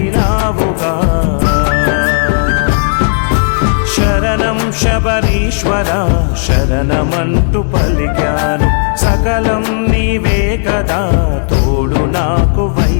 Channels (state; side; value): silent; right; digital silence